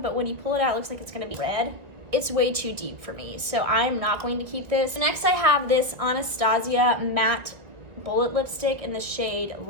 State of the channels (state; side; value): late; left; 1.9 ms